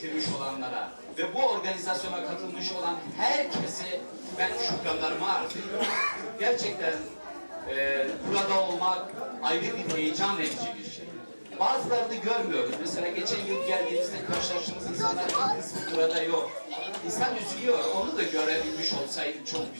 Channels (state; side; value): inverted; both; correlation -1.00